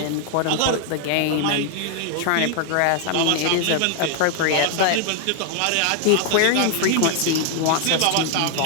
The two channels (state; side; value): different; both; correlation 0.00